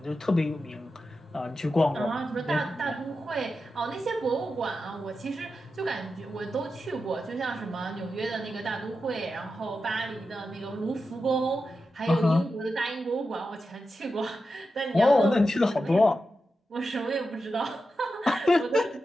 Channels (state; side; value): normal; both; correlation 0.90